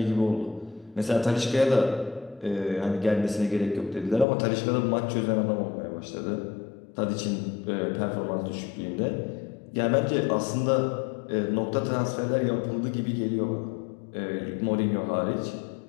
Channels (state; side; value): drops out; right; at 4.2 s